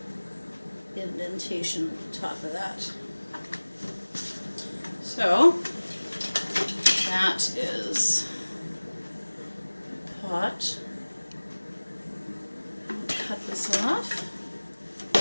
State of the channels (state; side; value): inverted; both; correlation -1.00